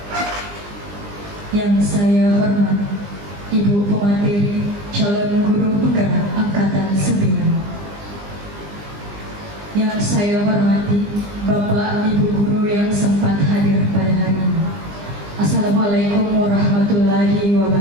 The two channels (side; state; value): left; late; 20 ms